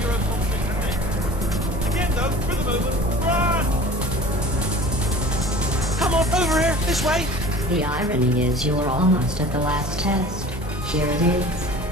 and again, though, for the moment, run! Come on, over here, this way! The irony is you were almost at the last test. Here it is.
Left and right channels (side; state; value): both; normal; correlation 0.41